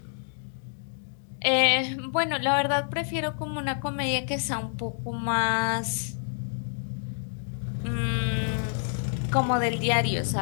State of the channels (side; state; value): right; silent; digital silence